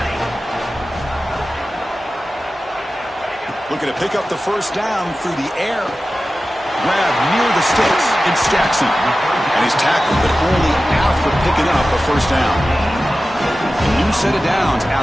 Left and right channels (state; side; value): normal; both; correlation 0.95